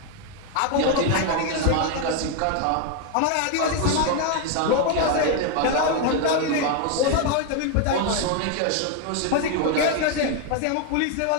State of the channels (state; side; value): different; both; correlation 0.01